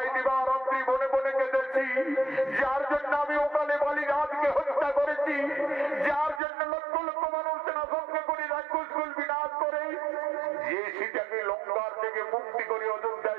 দিবারাত্রি বনে বনে কেঁদেছি, যার জন্য আমি ওকালে বালি রাজকে হত্যা করেছি, যার জন্য লক্ষ লক্ষ মানুষ সেনা সঙ্গে করে রাক্ষসকুল বিনাশ করে যে সীতাকে লঙ্কার থেকে মুক্তি করে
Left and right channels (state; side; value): drops out; left; at 6.4 s